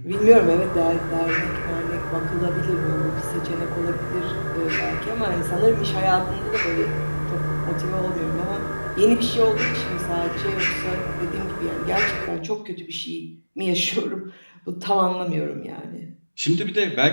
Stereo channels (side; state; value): both; inverted; correlation -1.00